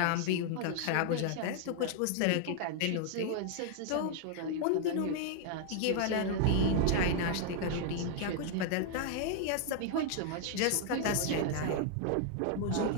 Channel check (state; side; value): different; both; correlation 0.00